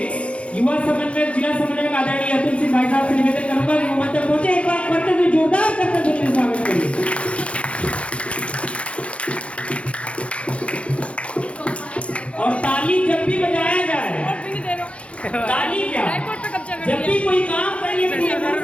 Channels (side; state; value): right; late; 0.061 ms